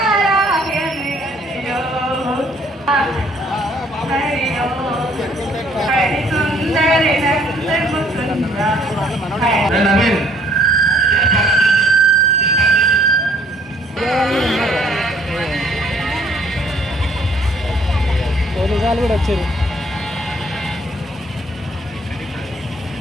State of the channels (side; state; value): both; normal; correlation 0.61